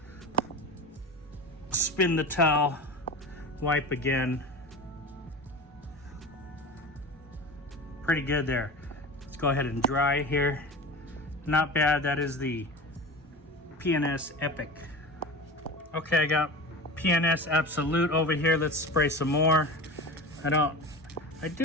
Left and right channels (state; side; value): normal; both; correlation 0.31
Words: Spin the towel, wipe again. Pretty good there. Let's go ahead and dry here. Not bad. That is the P&S Epic. Okay, I got P&S Absolute over here. Let's spray some more. I